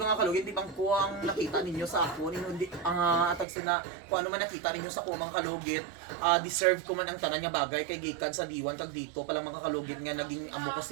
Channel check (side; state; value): left; drops out; at 3.5 s